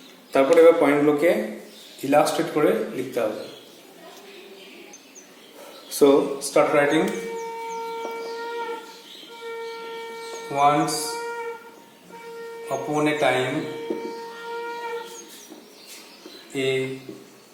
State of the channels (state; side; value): identical; both; correlation 1.00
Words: তারপরে এবার পয়েন্টগুলোকে ইলাস্ট্রেট করে লিখতে হবে। So start writing. Once upon a time, a